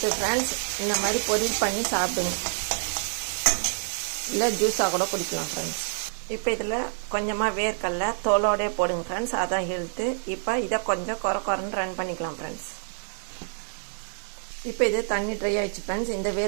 ஃப்ரெண்ட்ஸ். இந்த மாதிரி பொரியல் பண்ணி சாப்பிடுங்க, இல்லை ஜூஸாக கூட குடிக்கலாம் ஃப்ரெண்ட்ஸ். இப்போ இதில் கொஞ்சமாக வேர்க்கடலை தோலோடே போடுங்க ஃப்ரெண்ட்ஸ், அதான் ஹெல்த்து. இப்போ இதை கொஞ்சம் குறைன்னு ரன் பண்ணிக்கலாம் ஃப்ரெண்ட்ஸ். இப்போ இது தண்ணி ட்ரை ஆகிடுச்சு ஃப்ரெண்ட்ஸ். இந்த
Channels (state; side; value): silent; left; digital silence